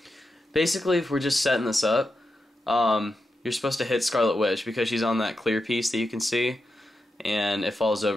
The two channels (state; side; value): normal; both; correlation 0.88